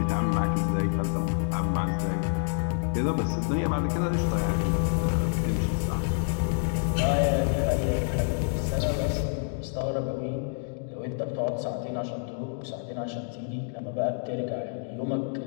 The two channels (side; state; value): right; silent; digital silence